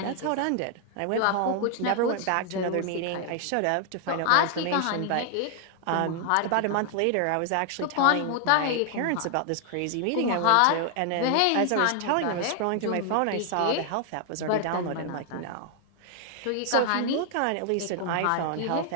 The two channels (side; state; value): both; different; correlation 0.00